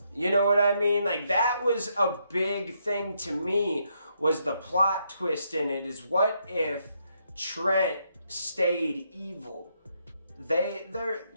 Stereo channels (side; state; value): both; inverted; correlation -0.76